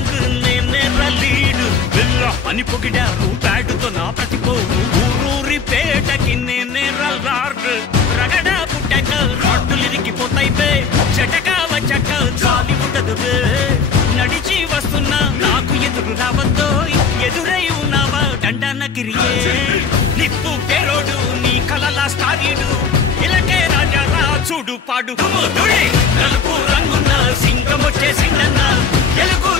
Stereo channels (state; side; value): quieter; right; 5.9 dB